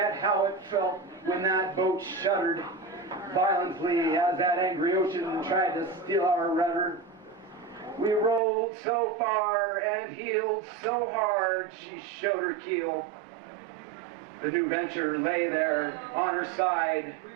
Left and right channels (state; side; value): drops out; left; at 8.4 s